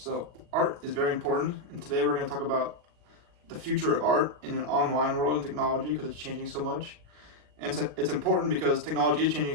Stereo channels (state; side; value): late; left; 40 ms